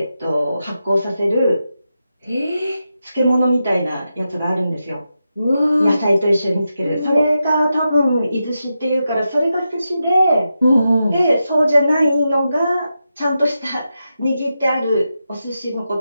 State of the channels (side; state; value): both; inverted; correlation -0.88